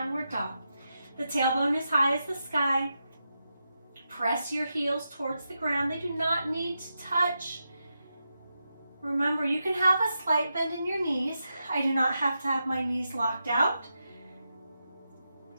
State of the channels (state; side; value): inverted; both; correlation -0.87